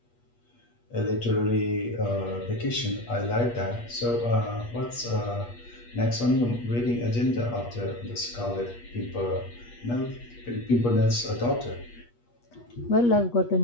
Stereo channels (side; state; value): right; late; 8.4 ms